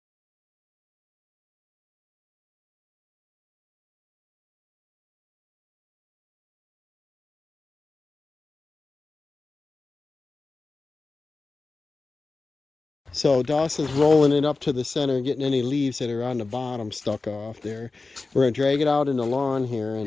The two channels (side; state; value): right; quieter; 3.7 dB